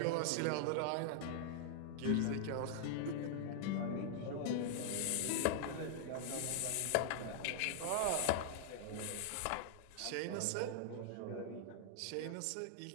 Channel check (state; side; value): different; both; correlation -0.01